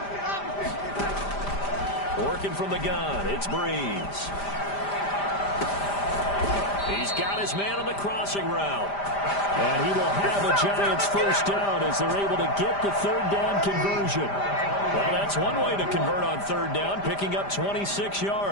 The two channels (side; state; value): right; late; 5.0 ms